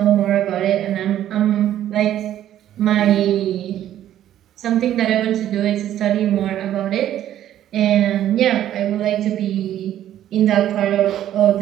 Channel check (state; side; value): quieter; left; 11.8 dB